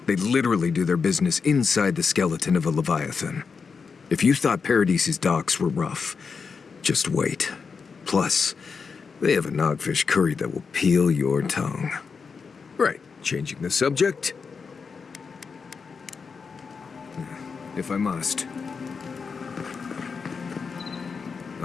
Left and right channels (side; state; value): right; quieter; 5.4 dB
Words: They literally do their business inside the skeleton of a Leviathan. If you thought Paradise's docks were rough, just wait. Plus, they have a nogfish curry that will peel your tongue. Right, changing the subject. If I must.